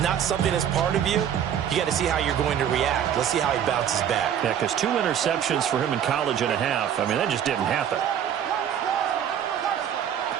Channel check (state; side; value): quieter; left; 9.3 dB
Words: something that's part of you. You got to see how you're going to react. Let's see how he bounces back. Yeah, because 2 interceptions for him in college and a half. I mean, that just didn't happen.